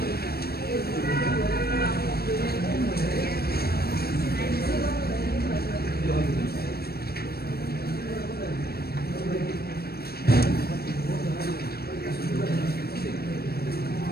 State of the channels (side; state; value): right; late; 0.46 ms